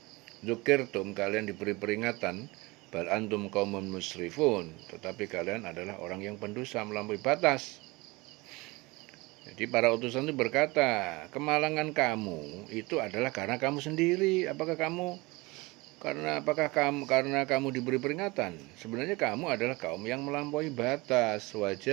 dzukirtum, kalian diberi peringatan, bal antum qaumun musrifun, tetapi kalian adalah orang yang pendosa melampaui batas. Jadi para utusan itu berkata, kemalangan kamu itu adalah karena kamu sendiri. Apakah kamu diberi peringatan? Sebenarnya kamu adalah kaum yang melampaui batas.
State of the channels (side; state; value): left; quieter; 23.6 dB